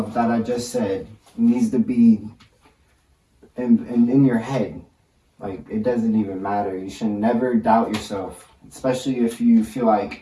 that I just said needs to be in your head. Like, it doesn't even matter. You should never doubt yourself, especially if you feel like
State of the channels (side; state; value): both; identical; correlation 1.00